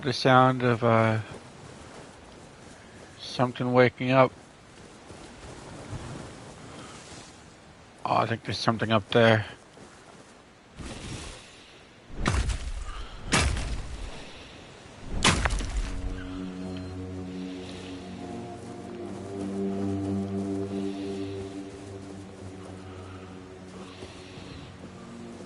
the sound of something waking up. Oh, I think there's something up there.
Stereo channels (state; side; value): identical; both; correlation 1.00